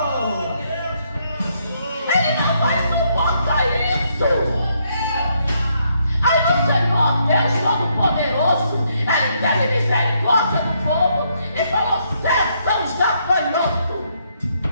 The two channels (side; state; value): both; inverted; correlation -0.74